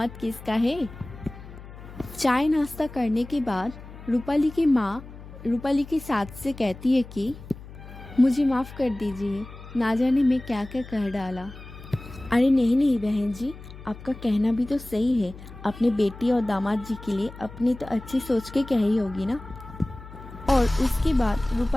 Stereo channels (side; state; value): left; noise; hum, 16 dB below the sound